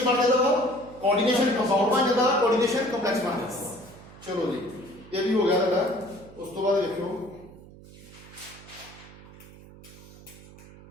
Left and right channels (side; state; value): right; noise; hum, 20 dB below the sound